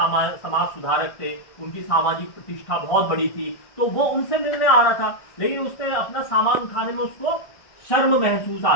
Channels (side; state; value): right; late; 1.6 ms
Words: सुधारक थे, उनकी सामाजिक प्रतिष्ठा बहुत बड़ी थी। तो वो उनसे मिलने आ रहा था, लेकिन उसने अपना सामान उठाने में उसको शर्म महसूस आ